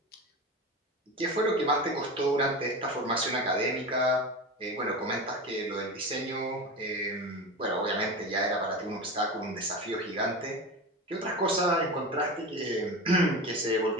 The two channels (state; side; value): normal; both; correlation 0.27